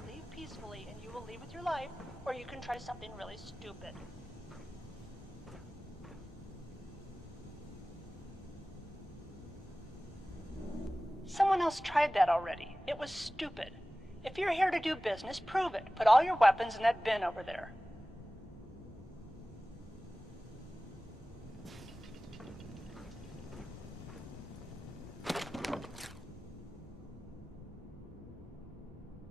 leave peacefully and you will leave with your life, or you can try something really stupid. Someone else tried that already. It was stupid. If you're here to do business, prove it. Put all your weapons in that bin over there.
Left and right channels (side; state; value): both; normal; correlation 0.97